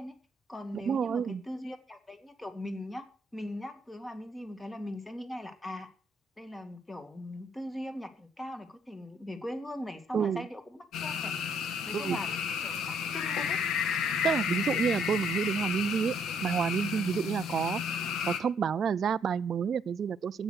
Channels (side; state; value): both; normal; correlation 0.68